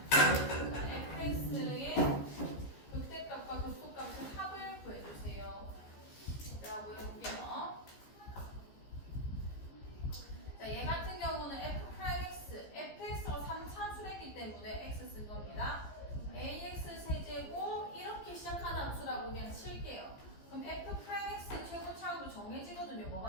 자, fx의 극대값과 극소값의 합을 구해주세요. 자, 보여볼게요. 자, 얘 같은 경우는 f'x, fx가 3차수랬기 때문에 x 쓴 겁니다. ax 세제곱 이렇게 시작하는 함수라고 그냥 칠게요. 그럼 f'x 최고차로 정해지거든요.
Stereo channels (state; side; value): late; right; 15 ms